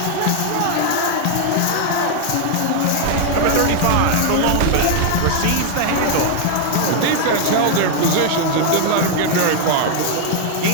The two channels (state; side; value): different; both; correlation 0.00